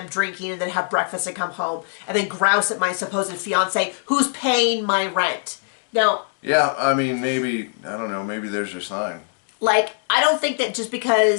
drinking and then have breakfast and come home and then grouse at my supposed fiance who's paying my rent. Now... Yeah, I mean, maybe, I don't know, maybe there's your sign. Like, I don't think that just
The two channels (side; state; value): right; silent; 64 dB below the other